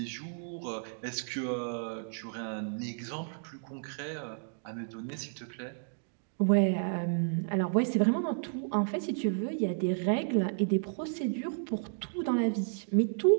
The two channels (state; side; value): silent; left; digital silence